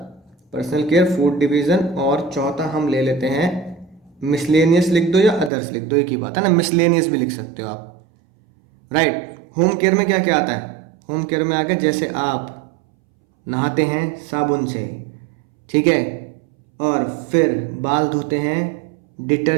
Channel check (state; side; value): drops out; left; at 5.5 s